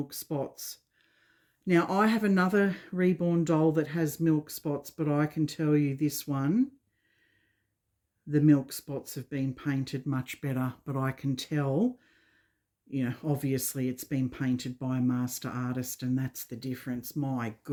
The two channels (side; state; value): both; identical; correlation 1.00